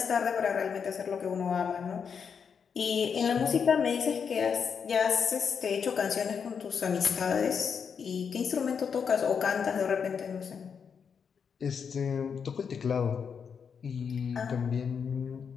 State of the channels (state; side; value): quieter; right; 6.6 dB